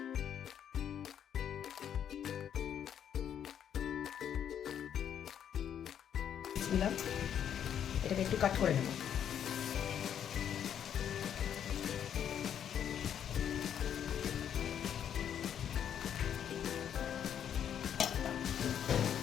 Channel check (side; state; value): right; quieter; 9.1 dB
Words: এটাকে একটু কাট করে নেব।